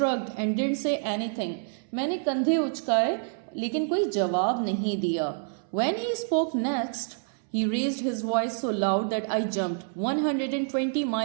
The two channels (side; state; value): left; silent; 60 dB below the other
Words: and didn't say anything. मैंने कंधे उचकाए लेकिन कोई जवाब नहीं दिया। When he spoke next he raised his voice so loud that I jumped. 120